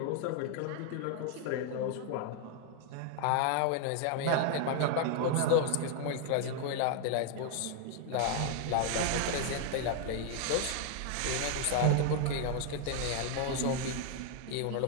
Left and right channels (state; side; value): different; both; correlation 0.00